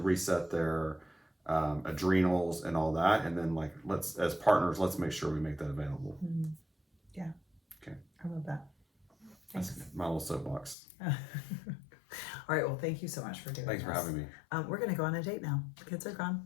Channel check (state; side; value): drops out; right; at 10.8 s